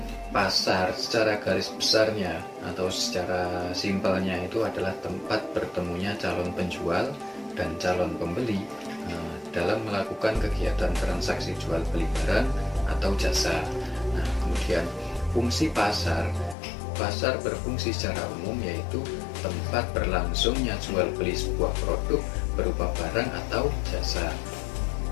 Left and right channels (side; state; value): right; drops out; at 16.6 s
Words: Pasar secara garis besarnya atau secara simpelnya itu adalah tempat bertemunya calon penjual dan calon pembeli dalam melakukan kegiatan transaksi jual beli barang atau jasa. Nah, kemudian fungsi pasar berfungsi secara umum yaitu tempat berlangsungnya jual beli sebuah produk berupa barang atau jasa.